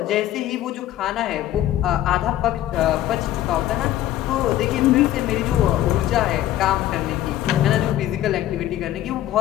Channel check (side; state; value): right; quieter; 13.2 dB